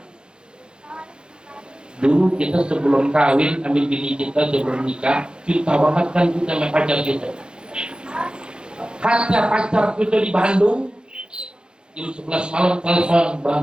Dulu kita sebelum kawin, ambil bini kita sebelum nikah, kita banget kan kita sama pacar kita. Kata pacar kita di Bandung, jam 11 malam telepon,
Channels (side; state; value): left; late; 0.049 ms